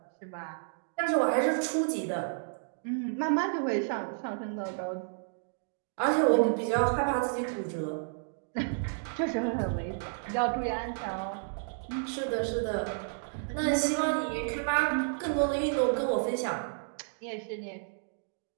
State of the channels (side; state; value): left; silent; digital silence